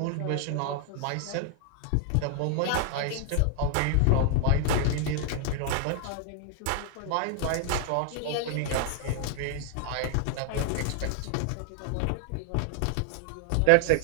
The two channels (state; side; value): different; both; correlation 0.00